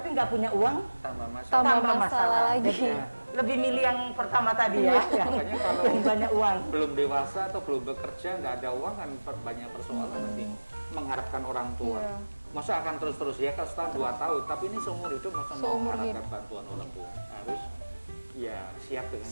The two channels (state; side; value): inverted; both; correlation -1.00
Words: nggak punya uang, Tambah masalah. Tambah masalah lagi. Jadi Ya. lebih milih yang pertama tadi ya, yang, Makanya kalau yang banyak uang. belum dewasa atau belum bekerja, nggak ada uang kan banyak persoalan nanti. Mengharapkan orang tua. Iya. Masa akan terus-terus ya, kalau setahun 2 tahun, tapi ini seumur hidup masa mau Seumur mengharapkan hidup. bantuan orang tua. Harus ya siap dengan